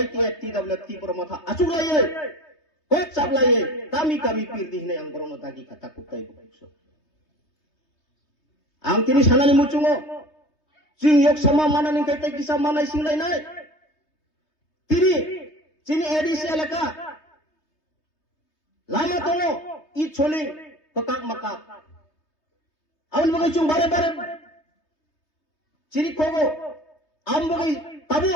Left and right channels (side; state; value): right; late; 3.2 ms